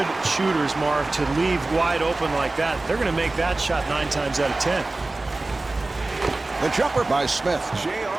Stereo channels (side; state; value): left; quieter; 3.1 dB